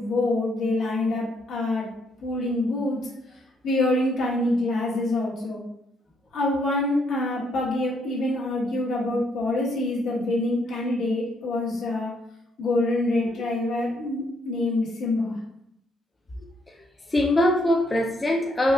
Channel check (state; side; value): normal; both; correlation 0.72